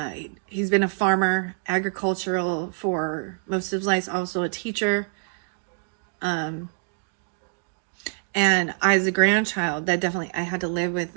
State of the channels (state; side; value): silent; left; 61 dB below the other